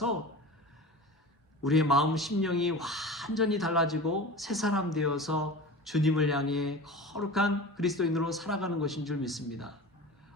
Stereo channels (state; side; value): normal; both; correlation 0.34